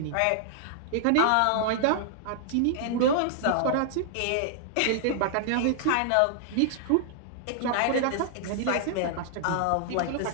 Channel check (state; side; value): different; both; correlation -0.01